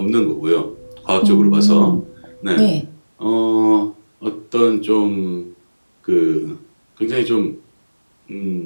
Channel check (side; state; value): both; inverted; correlation -1.00